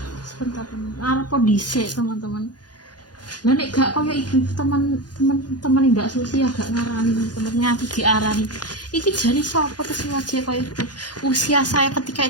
Sebentar teman, arep dhisik teman-teman. Lah nek gak koyo ibu teman-teman ndak susi ya gak ngarani teman nganti diarani. Iki jane sapa terus wajah koyo ibu. Usia saya ketika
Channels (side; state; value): right; late; 0.69 ms